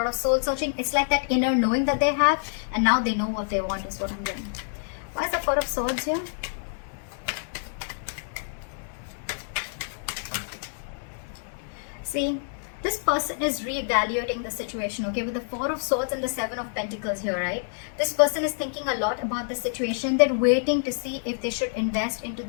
of soul searching. It's like that inner knowing that they have, and now they know what they want is what I'm getting. Why is the Four of Swords here? See, this person is reevaluating the situation, okay? With the Four of Swords and the Seven of Pentacles here, right? This person is thinking a lot about the situation. They're waiting to see if they should invest into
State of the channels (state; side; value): silent; right; digital silence